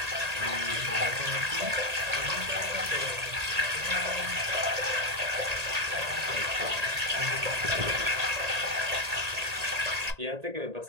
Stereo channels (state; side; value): late; left; 1.8 ms